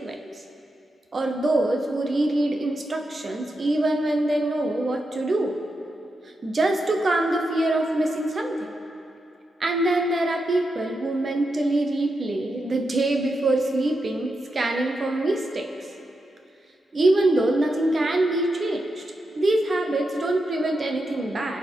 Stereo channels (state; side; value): normal; both; correlation 0.86